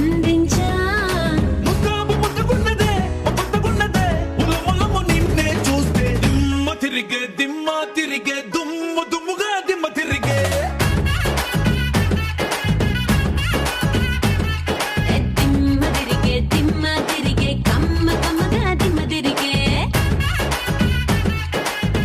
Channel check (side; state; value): both; identical; correlation 1.00